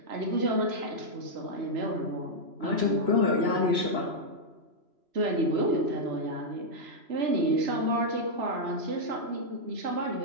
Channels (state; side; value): late; left; 3.0 ms